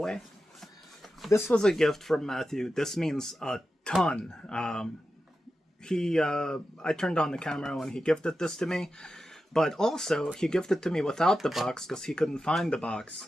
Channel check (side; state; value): both; normal; correlation 0.91